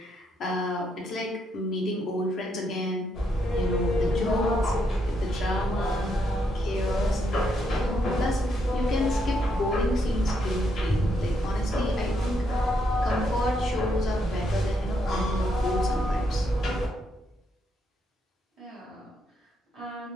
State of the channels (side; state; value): both; normal; correlation 0.77